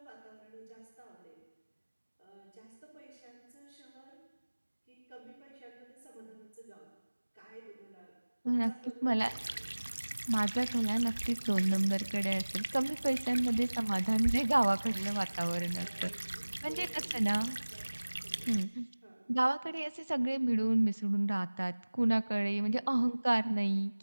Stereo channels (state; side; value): inverted; both; correlation -1.00